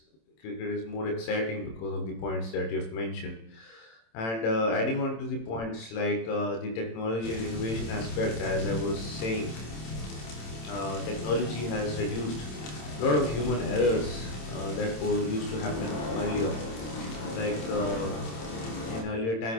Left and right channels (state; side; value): late; right; 27 ms